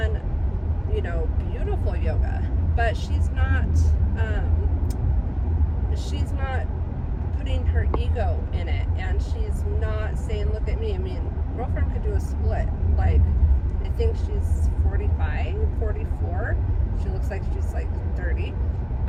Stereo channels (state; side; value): identical; both; correlation 1.00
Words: you know, beautiful yoga, but she's not putting her ego in it, and she's not saying, look at me. I mean, girlfriend could do a split. Like, I think she's 45, 44. She looks like she's like 30.